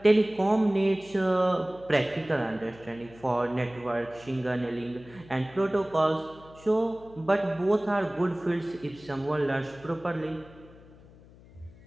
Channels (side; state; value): left; noise; hum, 23 dB below the sound